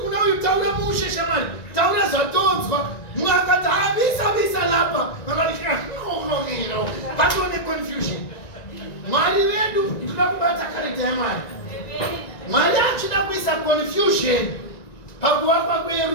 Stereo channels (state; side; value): late; right; 1.9 ms